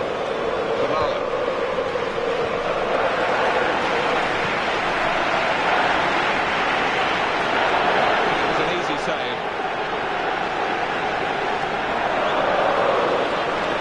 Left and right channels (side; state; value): both; identical; correlation 1.00